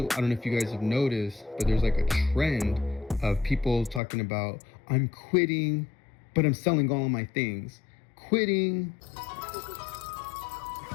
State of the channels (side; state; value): right; drops out; at 4.0 s